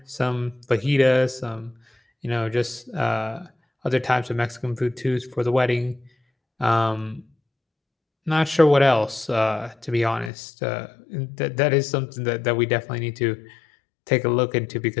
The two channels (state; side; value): drops out; right; at 10.3 s